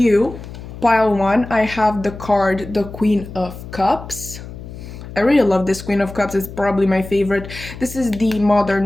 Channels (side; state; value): left; noise; hum, 13 dB below the sound